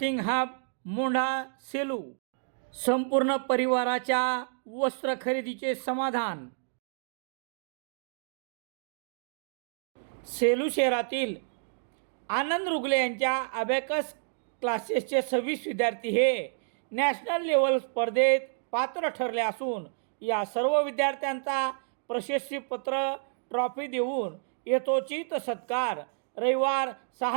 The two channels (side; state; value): left; silent; digital silence